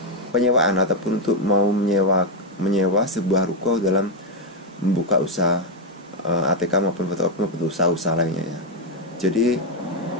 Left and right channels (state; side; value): normal; both; correlation 0.04